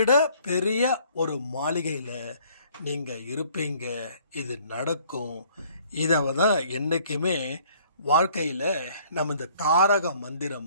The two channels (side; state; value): both; inverted; correlation -0.58